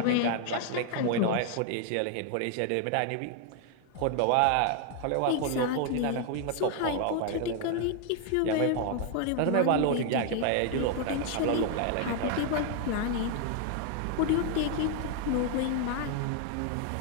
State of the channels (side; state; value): both; different; correlation 0.00